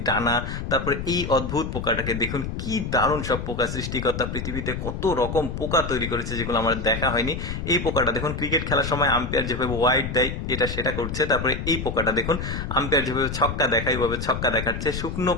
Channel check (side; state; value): left; noise; rumble, 5 dB below the sound